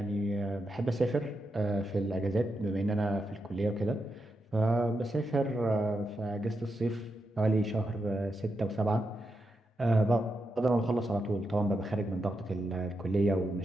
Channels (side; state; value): both; normal; correlation 0.86